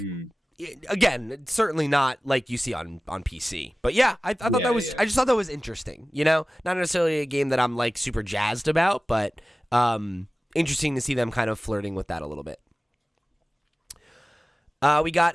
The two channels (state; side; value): normal; both; correlation 0.97